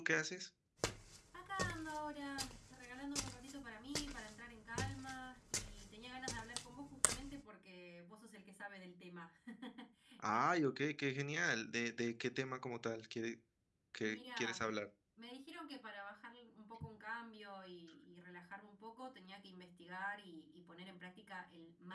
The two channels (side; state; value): both; identical; correlation 1.00